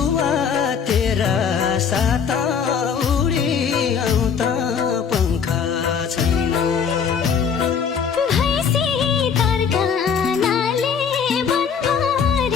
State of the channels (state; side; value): quieter; right; 6.8 dB